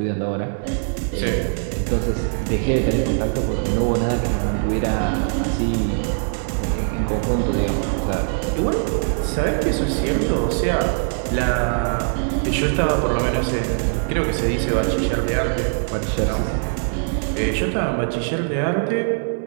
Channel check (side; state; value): left; silent; digital silence